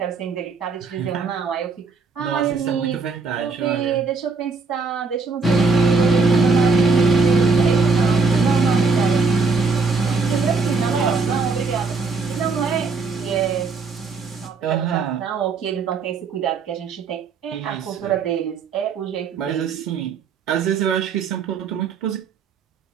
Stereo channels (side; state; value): left; quieter; 4.4 dB